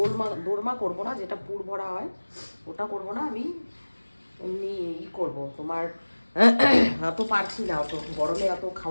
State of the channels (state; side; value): inverted; both; correlation -1.00